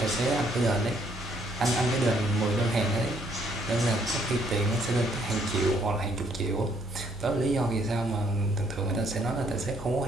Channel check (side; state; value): both; normal; correlation 0.68